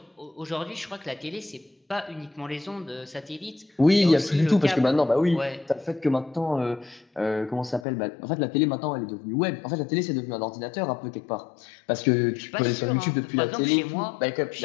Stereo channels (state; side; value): drops out; right; at 7.9 s